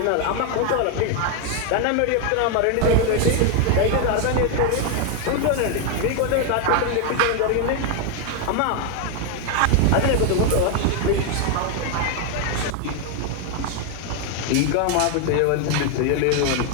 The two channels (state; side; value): different; both; correlation 0.01